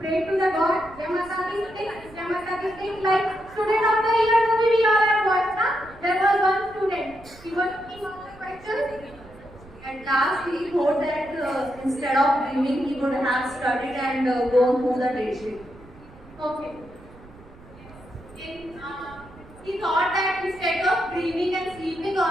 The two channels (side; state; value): right; noise; rumble, 22 dB below the sound